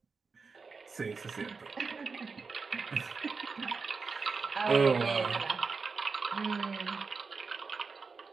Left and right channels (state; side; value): quieter; left; 4.7 dB